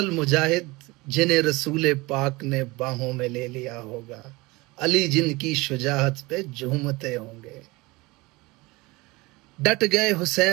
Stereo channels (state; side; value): quieter; left; 22.9 dB